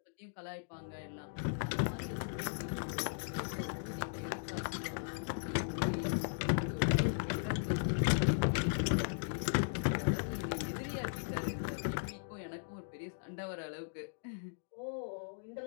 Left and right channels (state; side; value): silent; right; digital silence